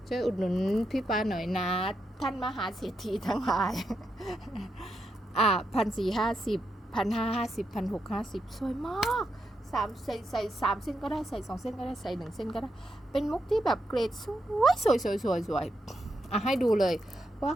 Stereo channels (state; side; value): normal; both; correlation 0.83